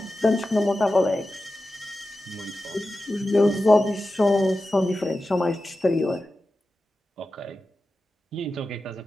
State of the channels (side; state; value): both; normal; correlation 0.93